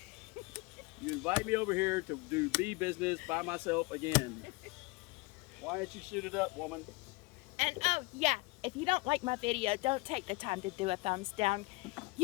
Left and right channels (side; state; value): right; quieter; 24.5 dB